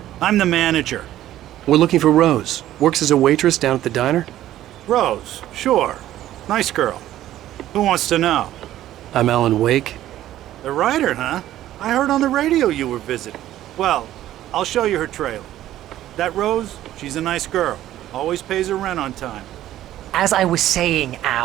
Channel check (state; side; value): quieter; left; 13.3 dB